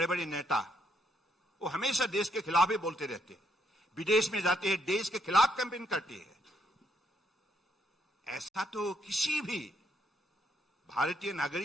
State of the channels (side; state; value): both; normal; correlation 0.74